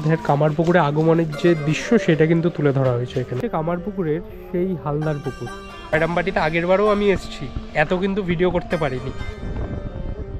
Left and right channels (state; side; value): identical; both; correlation 1.00